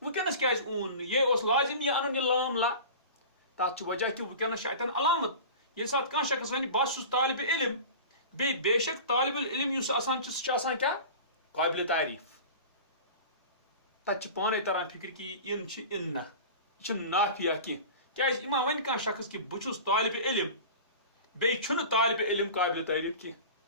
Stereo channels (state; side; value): inverted; both; correlation -0.35